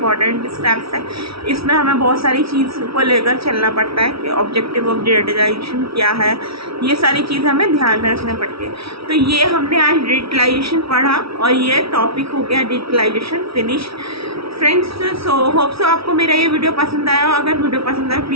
स्टेप्स है। इसमें हमें बहुत सारी चीज़ को लेकर चलना पड़ता है कि ऑब्जेक्टिव ऑफ डिजिटलाइजेशन क्या है, ये सारी चीज़ हमें ध्यान में रखना पड़ती है। तो ये हमने आज डिजिटलाइजेशन पढ़ा और ये टॉपिक हो गया digitalization finish. Friends, so hope so आपको मेरा ये वीडियो पसंद आया हो। अगर वीडियो पसंद आए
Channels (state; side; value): late; left; 0.76 ms